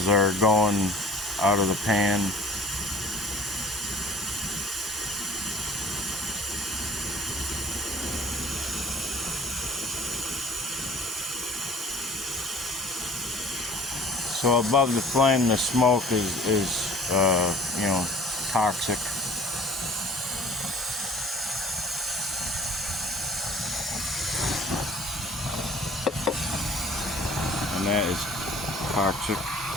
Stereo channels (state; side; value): normal; both; correlation 0.48